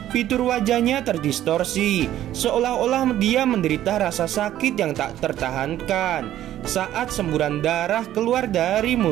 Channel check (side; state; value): left; quieter; 12.6 dB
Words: fitur wajahnya terdistorsi, seolah-olah dia menderita rasa sakit yang tak tertahankan. Saat semburan darah keluar dari